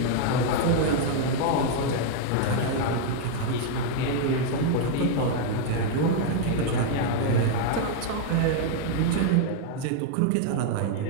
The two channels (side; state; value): both; different; correlation 0.00